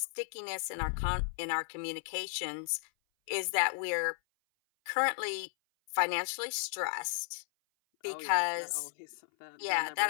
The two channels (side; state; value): right; silent; 55 dB below the other